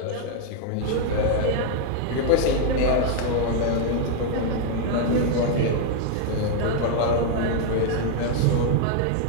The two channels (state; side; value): different; both; correlation 0.00